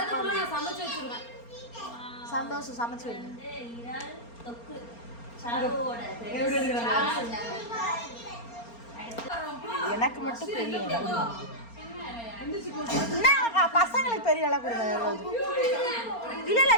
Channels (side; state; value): right; late; 4.3 ms